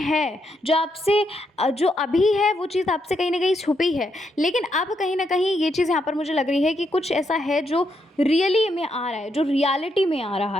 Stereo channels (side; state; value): both; normal; correlation 0.79